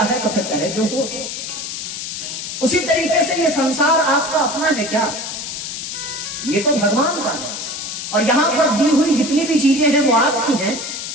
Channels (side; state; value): left; noise; hiss, 6 dB below the sound